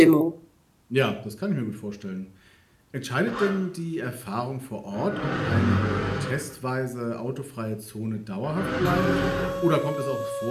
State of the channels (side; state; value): both; identical; correlation 1.00